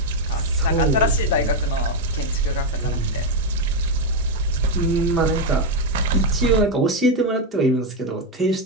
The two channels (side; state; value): both; normal; correlation 0.05